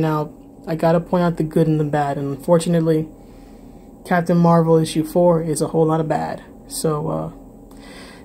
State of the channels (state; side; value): identical; both; correlation 1.00